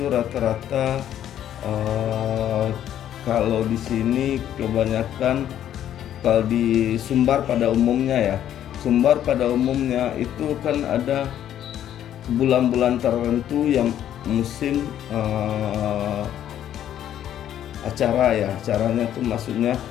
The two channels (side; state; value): right; quieter; 10.9 dB